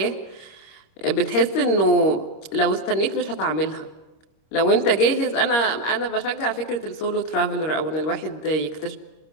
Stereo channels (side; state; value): right; late; 26 ms